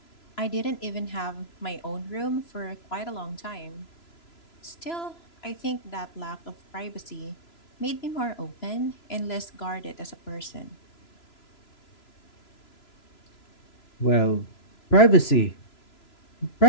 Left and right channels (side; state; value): right; late; 3.0 ms